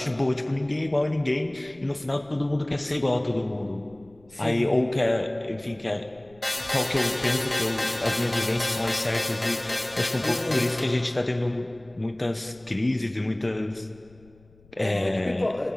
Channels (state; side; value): noise; left; rumble, 28 dB below the sound